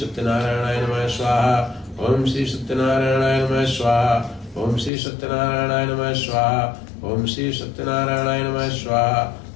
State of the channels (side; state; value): right; drops out; at 4.9 s